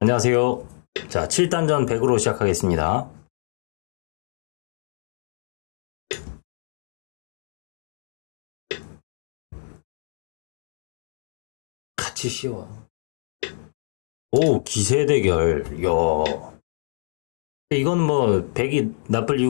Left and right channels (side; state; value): right; silent; digital silence